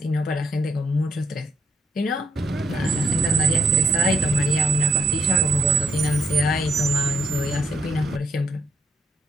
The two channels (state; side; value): normal; both; correlation 0.71